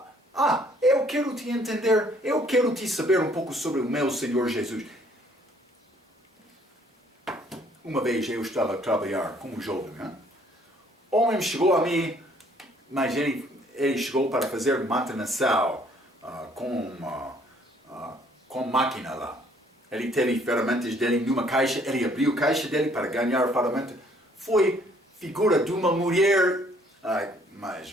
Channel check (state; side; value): normal; both; correlation 0.62